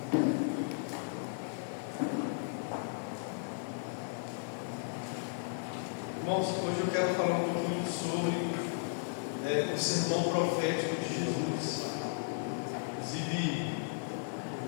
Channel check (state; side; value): silent; right; digital silence